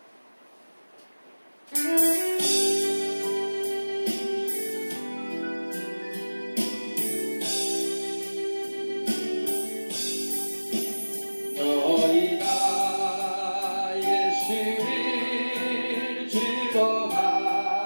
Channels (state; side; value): inverted; both; correlation -1.00